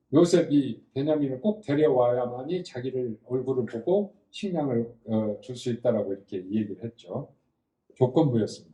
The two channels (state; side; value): identical; both; correlation 1.00